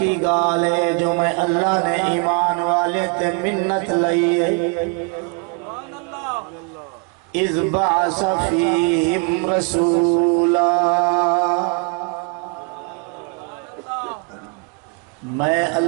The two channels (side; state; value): left; quieter; 33.1 dB